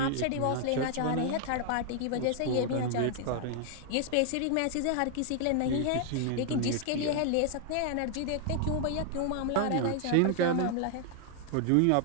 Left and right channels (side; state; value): both; different; correlation 0.00